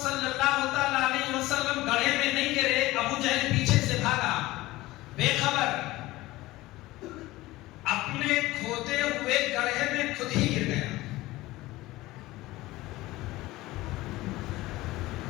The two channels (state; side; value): quieter; right; 18.4 dB